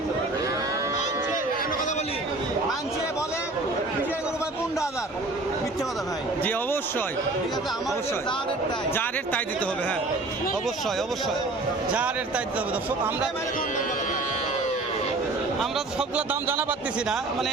বলে 15,000 মিথ্যে কথা ভাই। জি অবশ্যই, অবশ্যই যা রেট তাই দিতে হবে। হ্যাঁ অবশ্যই যা রেট তাই দিতে হবে দর্শক। আমরা সবগুলো দাম জানা পারতেছি না, মানে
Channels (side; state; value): left; quieter; 3.1 dB